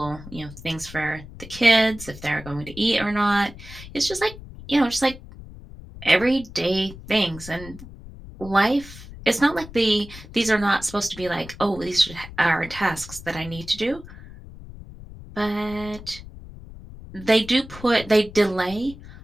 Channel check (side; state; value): left; noise; rumble, 16 dB below the sound